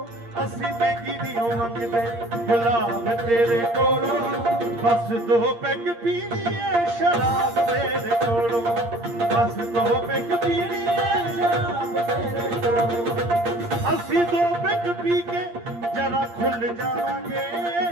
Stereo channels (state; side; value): late; left; 8.6 ms